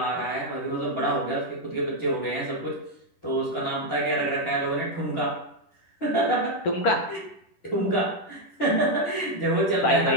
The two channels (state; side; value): late; right; 10 ms